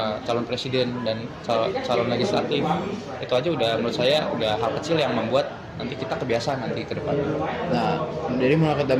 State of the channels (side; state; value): both; identical; correlation 1.00